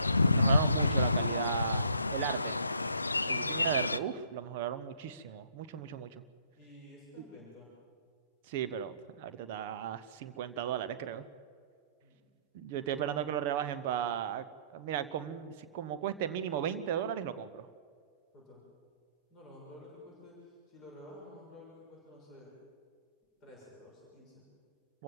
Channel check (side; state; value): both; inverted; correlation -0.60